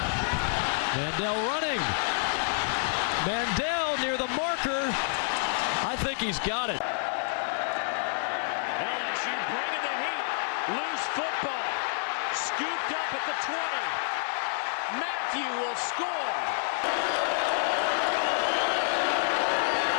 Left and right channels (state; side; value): silent; right; 59 dB below the other